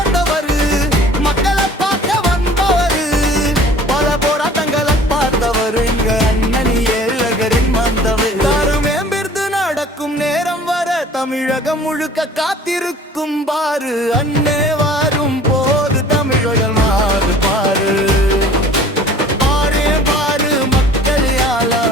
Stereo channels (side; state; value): both; normal; correlation 0.49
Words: மக்களை பார்க்க வந்தவரு, பல போராட்டங்களை பார்த்தவர் எங்க அண்ணனி ஏழகரின் வந்தவர். மேம்பிருந்து நடக்கும் நேரம் வர தமிழகம் முழுக்க காத்திருக்கும் பாரு. அண்ணே வாரும் போது தமிழர்கள் மாறு பாரு.